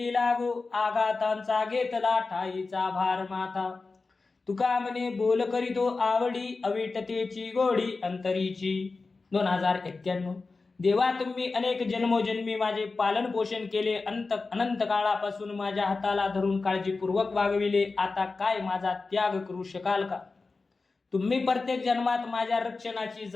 लागो, आघातांचा घेतला ठाईचा भार माता. तुका म्हणे बोल करीतो आवडी, अविटतेची गोडी अंतरीची. 2091. देवा तुम्ही अनेक जन्मोजन्मी माझे पालन पोषण केले. अनंत काळापासून माझ्या हाताला धरून काळजीपूर्वक वागविले. आता काय माझा त्याग करू शकाल का. तुम्ही प्रत्येक जन्मात माझ्या रक्षणाची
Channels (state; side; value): quieter; right; 4.0 dB